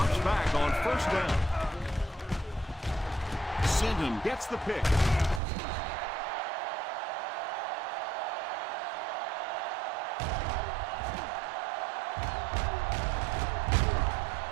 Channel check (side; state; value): left; drops out; at 5.4 s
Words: back on first down. Sinton gets the pick.